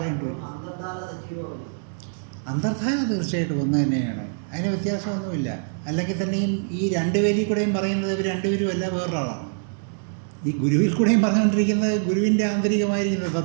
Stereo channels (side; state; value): left; silent; digital silence